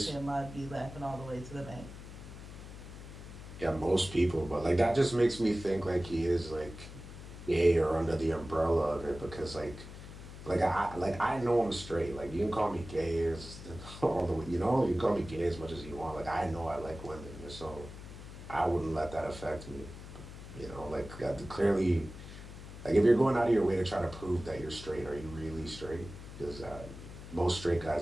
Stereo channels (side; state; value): left; noise; hum, 13 dB below the sound